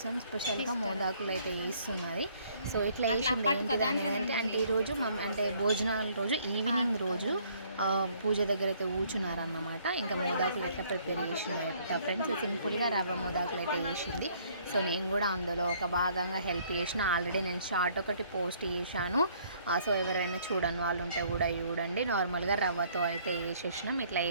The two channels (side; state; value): both; inverted; correlation -0.62